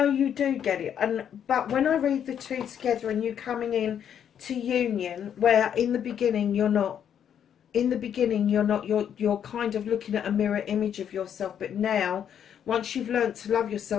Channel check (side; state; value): right; quieter; 8.9 dB